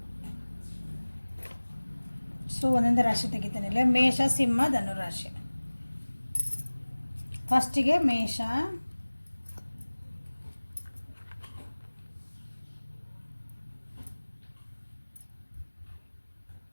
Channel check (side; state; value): both; inverted; correlation -1.00